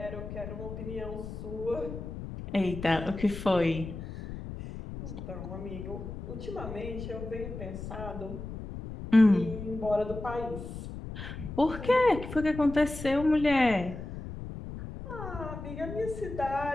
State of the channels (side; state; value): left; noise; rumble, 9 dB below the sound